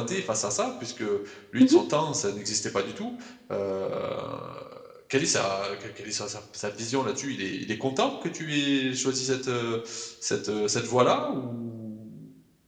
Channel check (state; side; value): identical; both; correlation 1.00